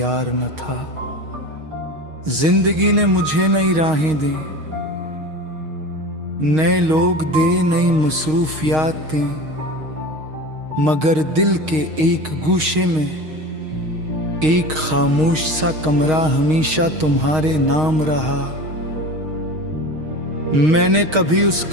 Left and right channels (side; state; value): left; late; 6.4 ms